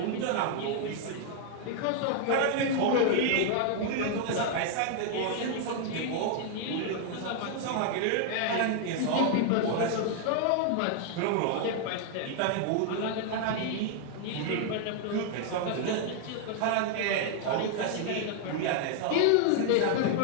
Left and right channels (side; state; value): both; different; correlation 0.00